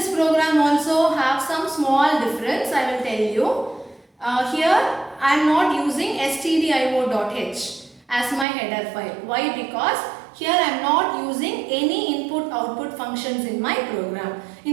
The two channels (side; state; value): left; drops out; at 8.5 s